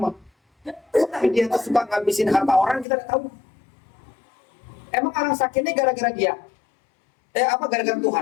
Tapi dia tuh suka ngabisin harta orang, kita tidak tahu. Emang orang sakit ini gara-gara dia? Gara-gara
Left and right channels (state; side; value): drops out; right; at 2.9 s